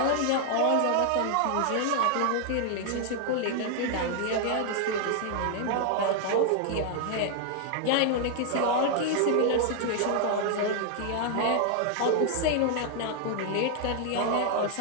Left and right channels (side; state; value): both; different; correlation 0.00